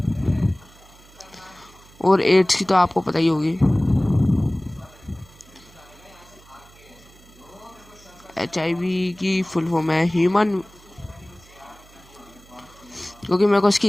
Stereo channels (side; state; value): right; noise; hum, 25 dB below the sound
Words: और एड्स की तो आपको पता ही होगी। HIV की फुल फॉर्म है ह्यूमन, क्योंकि मेरे को